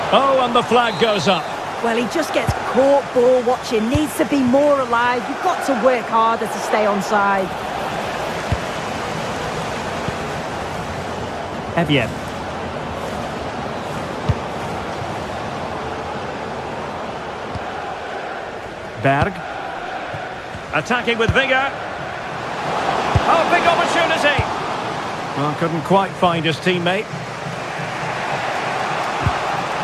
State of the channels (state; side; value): identical; both; correlation 1.00